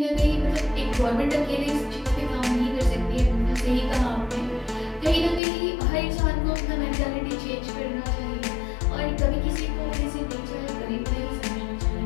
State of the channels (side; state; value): right; drops out; at 5.4 s